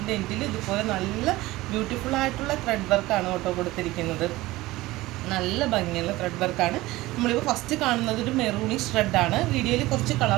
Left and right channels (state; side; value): quieter; left; 18.6 dB